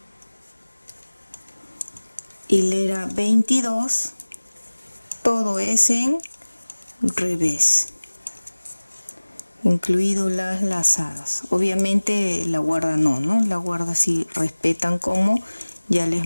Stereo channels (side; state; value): both; inverted; correlation -1.00